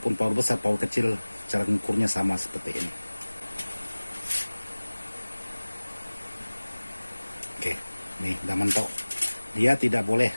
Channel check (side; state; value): both; inverted; correlation -1.00